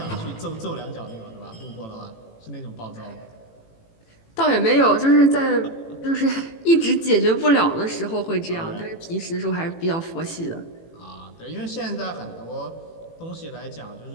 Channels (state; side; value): late; right; 18 ms